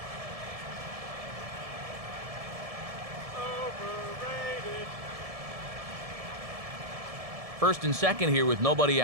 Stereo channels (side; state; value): left; late; 1.7 ms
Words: Overrated. First and second here with nobody